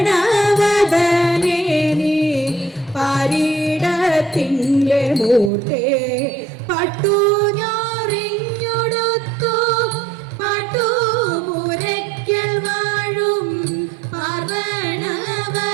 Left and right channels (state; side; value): drops out; left; at 5.5 s